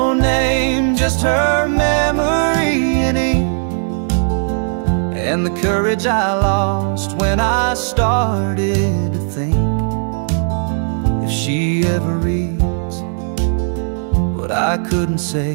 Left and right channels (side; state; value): left; silent; 60 dB below the other